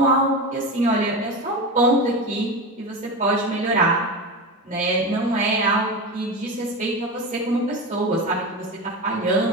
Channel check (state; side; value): normal; both; correlation 0.23